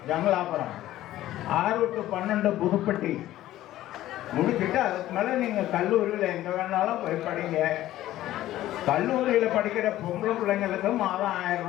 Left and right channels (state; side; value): quieter; right; 14.3 dB